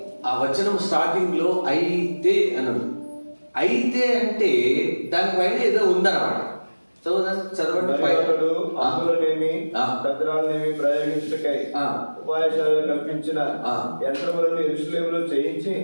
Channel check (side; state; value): both; inverted; correlation -1.00